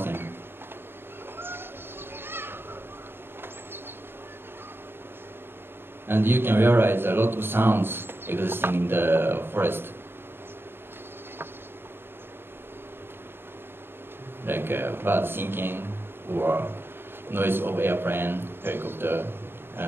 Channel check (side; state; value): left; late; 0.11 ms